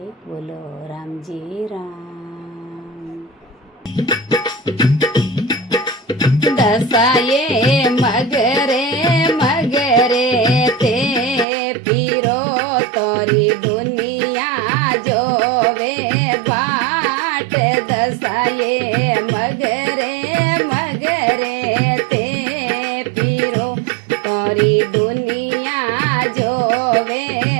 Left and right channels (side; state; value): left; drops out; at 11.5 s